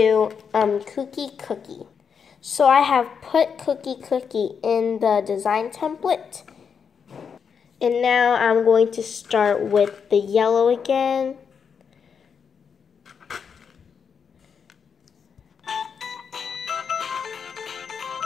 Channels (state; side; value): quieter; right; 6.6 dB